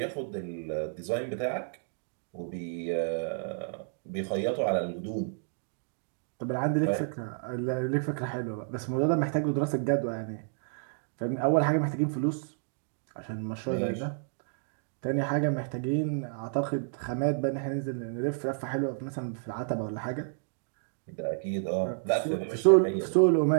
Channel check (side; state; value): left; silent; digital silence